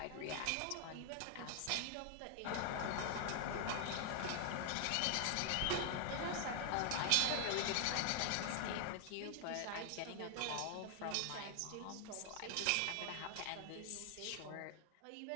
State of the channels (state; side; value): different; both; correlation 0.00